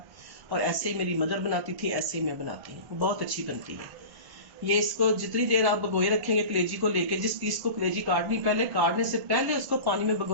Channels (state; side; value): late; left; 1.0 ms